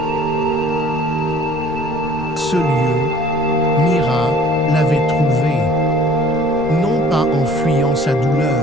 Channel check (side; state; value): left; noise; rumble, 16 dB below the sound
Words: Ce lieu, Mira l'avait trouvé, non pas en fuyant sa